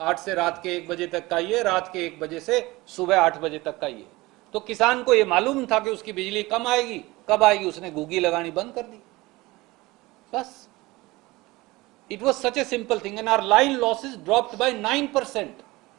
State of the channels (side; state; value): left; quieter; 21.0 dB